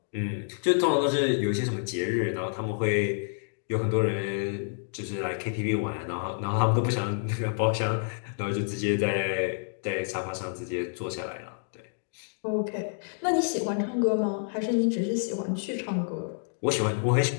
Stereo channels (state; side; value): silent; right; digital silence